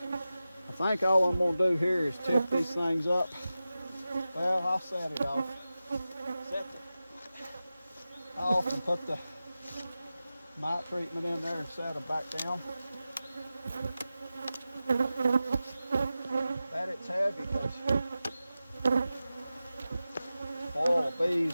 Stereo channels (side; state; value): both; inverted; correlation -0.94